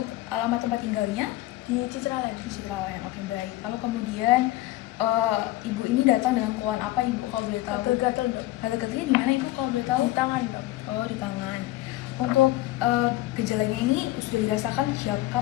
alamat tempat tinggalnya? Di Citraland. Di Citraland. Oke, baik. Lalu kemudian Ibu ini datang dengan keluhan apa Ibu kalau boleh tahu? Gatal-gatal dok. Gatal-gatalnya di mana Ibu kalau boleh tahu? Di tangan dok. Oh, di tangan. Untuk gejalanya ini sudah dirasakan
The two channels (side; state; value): right; quieter; 16.9 dB